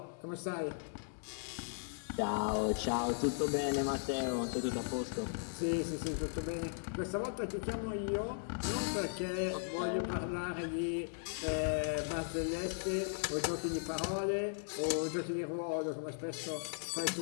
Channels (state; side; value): silent; right; digital silence